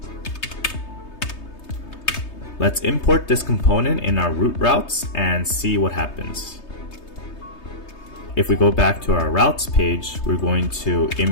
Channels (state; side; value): late; right; 3.2 ms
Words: Let's import this component in our root routes and see what happens. if we go back to our routes page, we're going to